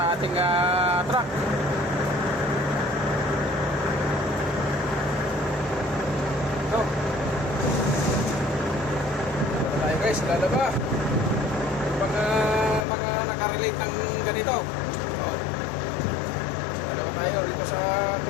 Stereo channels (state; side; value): drops out; right; at 12.9 s